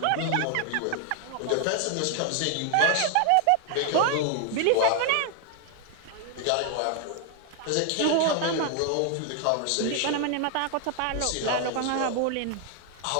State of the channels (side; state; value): both; different; correlation 0.00